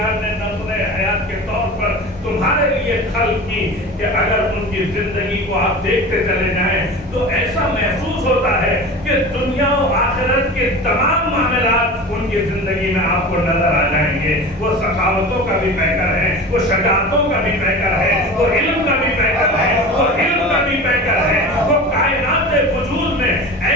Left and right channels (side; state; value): both; normal; correlation 0.34